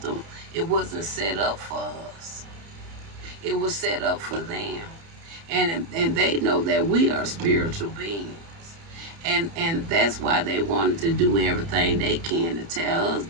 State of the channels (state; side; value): late; left; 30 ms